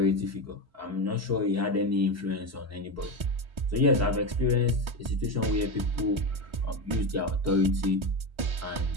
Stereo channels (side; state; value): left; late; 4.6 ms